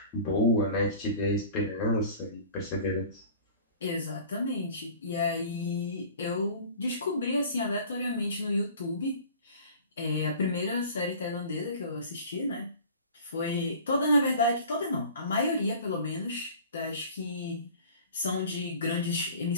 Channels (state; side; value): inverted; both; correlation -0.44